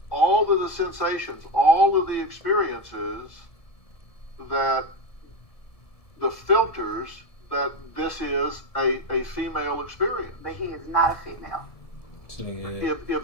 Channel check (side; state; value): right; late; 1.7 ms